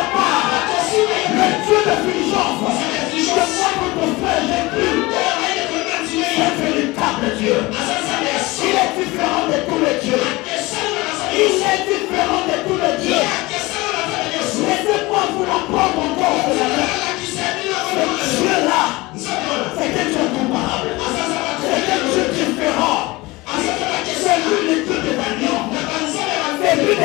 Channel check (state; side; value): quieter; right; 21.8 dB